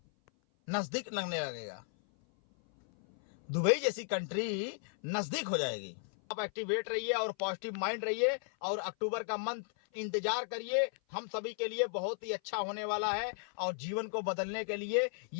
नजदीक लगने लगेगा, दुबई जैसी कंट्री नजदीक हो जाएगी। आप एक्टिवेट रहिए और पॉजिटिव माइंड रहिए और अक्टूबर का मंथ इंतजार करिए, हम सभी के लिए बहुत ही अच्छा होने वाला है और जीवन को बदलने के लिए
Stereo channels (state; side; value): silent; right; 54 dB below the other